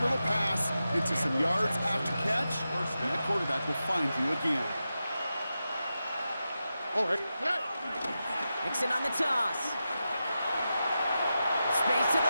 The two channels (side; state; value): both; inverted; correlation -0.90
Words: pass into some yards after catch, and the quarterback will find you again. All right. Mixon on the toss. Space to